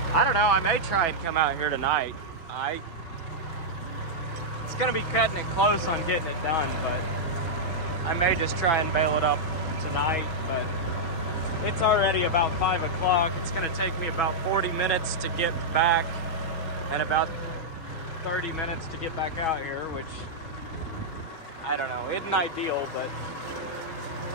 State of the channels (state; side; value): late; right; 6.2 ms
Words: I don't know, I may try and come out here tonight. It's gonna be cutting it close on getting it done, but I may just try and bale it up tonight. But it's already about 5 o'clock. It's gonna take me about 40 minutes to get back and about 30 minutes to get back out here, which I don't know, isn't ideal, but